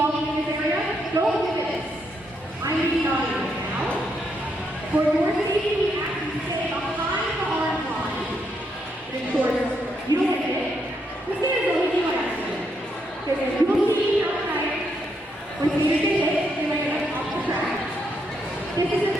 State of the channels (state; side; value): normal; both; correlation 0.78